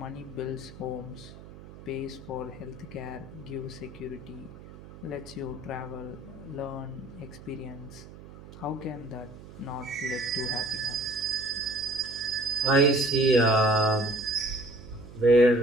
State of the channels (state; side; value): noise; right; hum, 17 dB below the sound